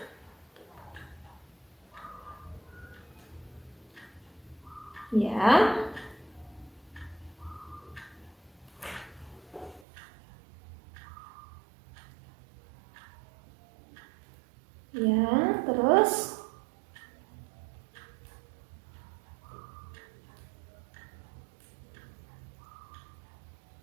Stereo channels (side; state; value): left; drops out; at 9.8 s